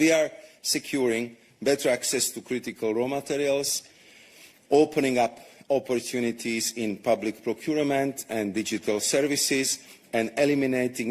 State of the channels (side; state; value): both; identical; correlation 1.00